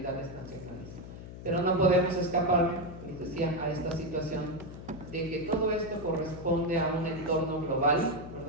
nacionales. Pero no podemos escapar, les decía, a esta situación de que todo esto corresponde a un entorno global,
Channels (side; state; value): left; noise; hum, 12 dB below the sound